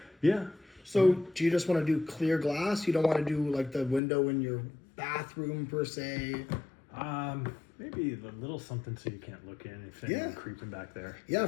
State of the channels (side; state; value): right; drops out; at 4.0 s